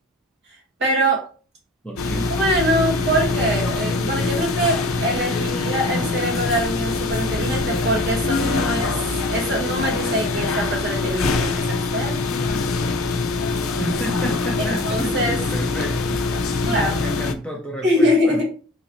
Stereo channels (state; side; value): normal; both; correlation 0.41